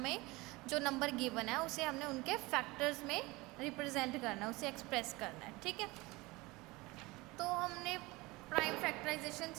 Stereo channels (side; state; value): left; quieter; 22.4 dB